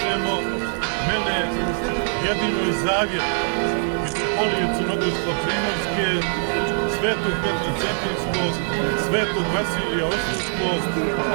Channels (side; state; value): left; silent; digital silence